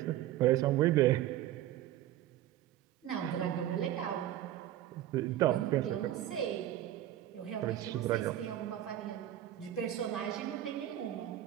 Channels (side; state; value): left; quieter; 12.9 dB